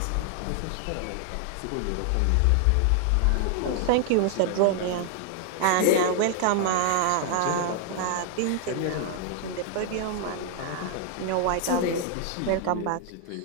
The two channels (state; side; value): different; both; correlation 0.00